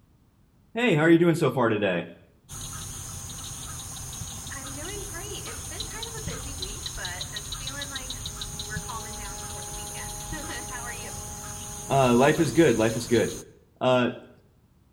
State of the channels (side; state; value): both; identical; correlation 1.00